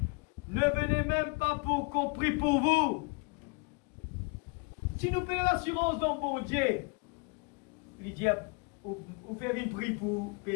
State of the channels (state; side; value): quieter; right; 31.5 dB